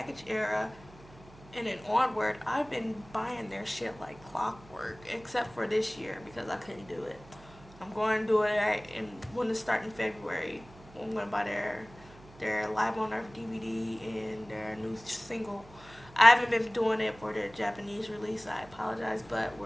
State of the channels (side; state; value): right; noise; hum, 22 dB below the sound